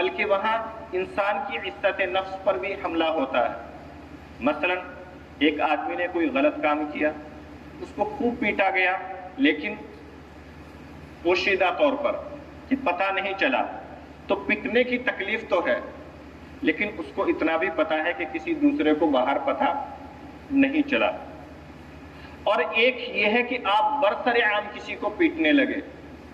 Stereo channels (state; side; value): identical; both; correlation 1.00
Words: وہاں انسان کی عزت نفس پر بھی حملہ ہوتا ہے۔ مثلا ایک آدمی نے کوئی غلط کام کیا، اس کو خوب پیٹا گیا، لیکن پوشیدہ طور پر کہ پتہ نہیں چلا، تو پٹنے کی تکلیف تو ہے، لیکن اس کو اتنا بھی پتہ ہے کہ کسی دوسرے کو باہر پتہ نہیں چلا۔ اور ایک یہ ہے کہ آپ برسر عام کسی کو پیٹنے لگے،